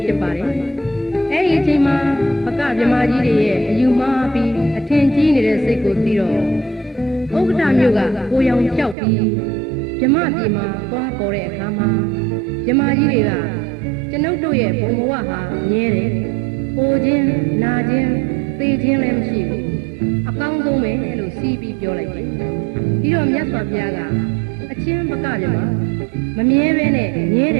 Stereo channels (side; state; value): left; drops out; at 9.0 s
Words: ဖြစ်ပါတယ်။အဲဒီအချိန်မှာပကဗြဟ္မာကြီးတွေရဲ့အယူမှားပြီးအထင်ကြီးနေတဲ့စိတ်ကိုသိတော့ဥက္ကဋ္ဌမြို့ကကိုရောင်ပြောက်ပြီးဗြဟ္မာပြည်မှာသွားပေါ်တဲ့အခါမှာဗြဟ္မာကြီးတွေကကျွန်ုပ်တို့ရဲ့ဘုံဘဝဟာမြဲတယ်။ပိုခြင်းနာခြင်းသေခြင်းလည်းမရှိဘူး။အကောင်းဆုံးပဲလို့စီးပြီးပြောလိုက်တယ်။ပြီးတော့မြတ်စွာဘုရားကအချင်းပကဗြဟ္မာမမြဲပဲနဲ့မြဲတ